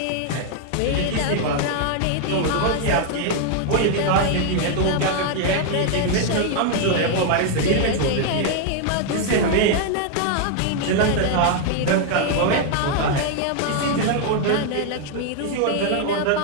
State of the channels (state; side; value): different; both; correlation 0.00